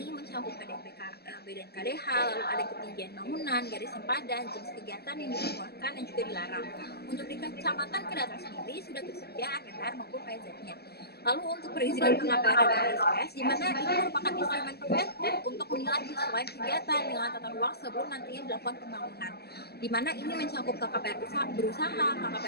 mencakup PDP dan KDH, lalu ada ketinggian bangunan, garis sempadan, jenis kegiatan yang diperbolehkan dan juga dilarang. Untuk di Kecamatan Kedaton sendiri sudah tersedia RTR maupun PZ-nya. Lalu untuk perizinan KKPR dan OSS, di mana ini merupakan instrumen preventif untuk menilai kesesuaian kegiatan dengan tata ruang sebelum nantinya dilakukan pembangunan. Di mana ini mencakup KKPR berusaha,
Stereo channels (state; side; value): late; right; 0.47 ms